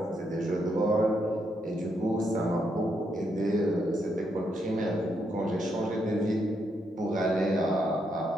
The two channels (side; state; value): both; normal; correlation 0.78